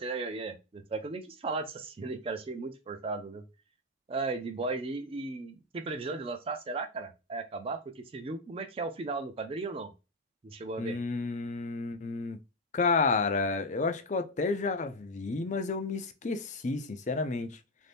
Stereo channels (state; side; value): normal; both; correlation 0.08